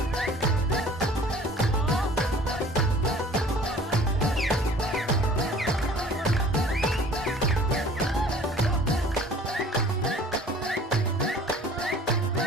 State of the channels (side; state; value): both; normal; correlation 0.49